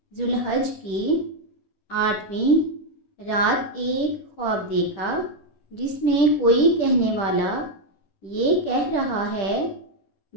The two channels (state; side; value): late; right; 10 ms